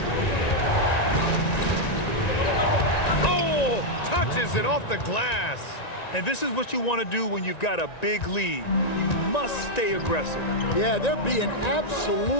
Oh, touches it off the glass. And this is what you want to do when you've got a big lead. You must stay aggressive. Yeah, they're being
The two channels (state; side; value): late; right; 1.9 ms